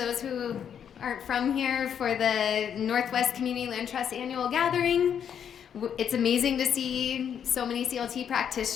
who aren't from here for the Northwest Community Land Trust Annual Gathering. It's amazing to see so many CLT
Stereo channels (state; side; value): quieter; right; 8.4 dB